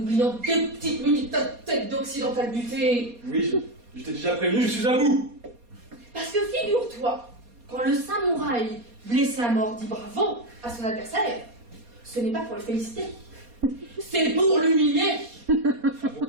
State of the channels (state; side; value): late; left; 4.2 ms